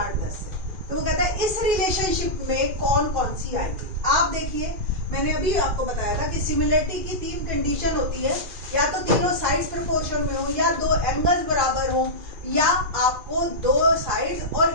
10 है। तो वो कहता है इस रिलेशनशिप में कौन कौन सी आएगी। आप देखिए, मैंने अभी आपको बताया था कि सिमिलरिटी की 3 कंडीशन होती है, या तो तीनों साइड्स प्रोपोर्शन में हो, या 2 एंगल्स बराबर हो, या आपको 2 साइड्स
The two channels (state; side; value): late; left; 2.4 ms